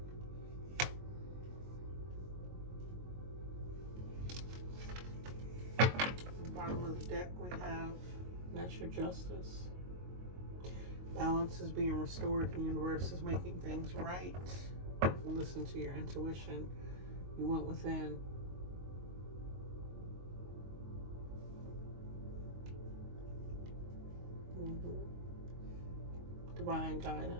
Bottom of the deck we have natural justice. Balance is being restored. The universe is making things right. Listen to your intuition. You went within. Divine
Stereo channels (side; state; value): left; late; 22 ms